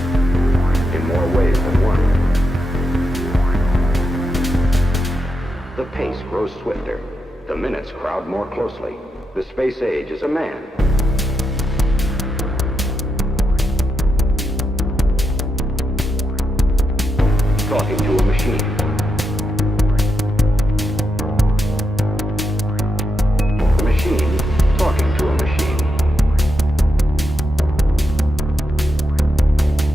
In more ways than one. The pace grows swifter. The minutes crowd more closely. The space age is a man. Talking to a machine. The machine talking to a machine.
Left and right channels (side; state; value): both; normal; correlation 0.85